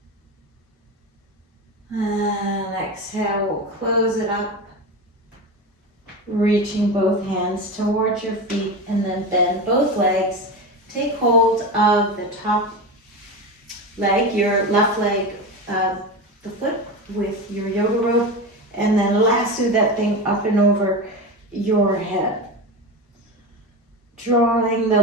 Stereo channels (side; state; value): both; normal; correlation 0.22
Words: And exhale, we'll close it up. Reaching both hands towards your feet and then bend both legs. Take hold of the top leg, your left leg, the foot with your yoga rope, and then lasso that thing up and over your head. Drawing the